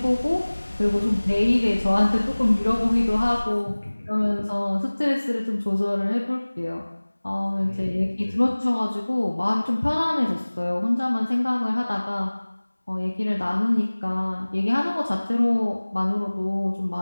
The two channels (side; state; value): both; inverted; correlation -1.00